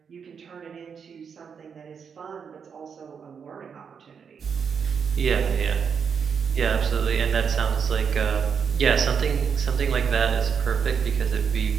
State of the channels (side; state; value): left; quieter; 6.6 dB